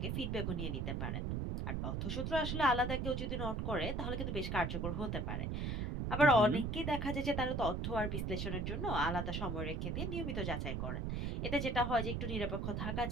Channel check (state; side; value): noise; right; rumble, 1 dB below the sound